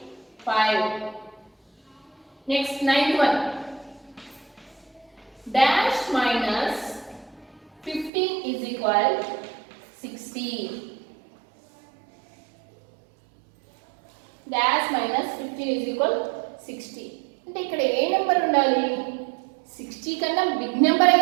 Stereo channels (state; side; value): drops out; left; at 8.1 s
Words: Next ninth one dash minus 15 is equal 60. Dash minus 15 is equal 60. అంటే ఇక్కడ ఏ నెంబర్ ఉండాలి? 60 కన్నా బిగ్ నెంబర్